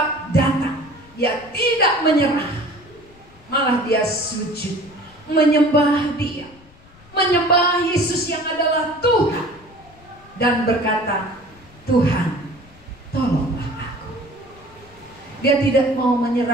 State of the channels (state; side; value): noise; left; rumble, 25 dB below the sound